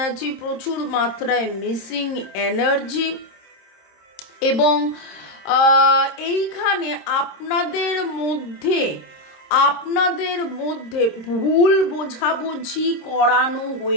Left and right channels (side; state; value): right; late; 26 ms